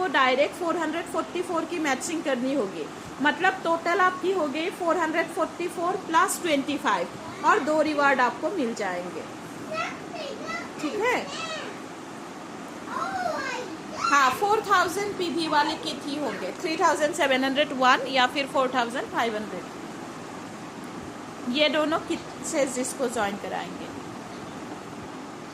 डायरेक्ट 444 की मैचिंग करनी होगी। मतलब टोटल आपकी हो गई 444 प्लस 25, और 2 रिवार्ड आपको मिल जाएंगे। ठीक है, हाँ 4000 पीवी वाले किट ही होंगे, 3701 या फिर 4500, ये दोनों किट से जिसको ज्वाइन कराएंगे।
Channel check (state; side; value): identical; both; correlation 1.00